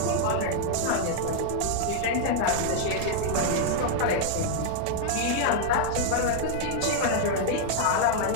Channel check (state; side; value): different; both; correlation -0.01